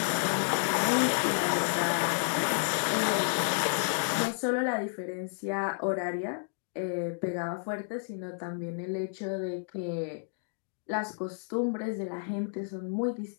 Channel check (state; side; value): silent; right; digital silence